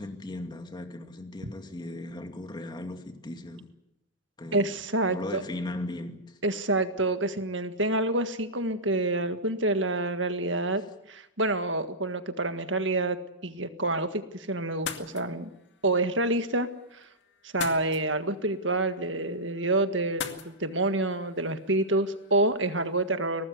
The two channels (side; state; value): both; normal; correlation -0.13